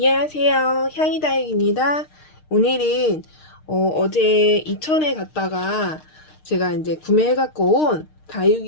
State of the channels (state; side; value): late; right; 6.5 ms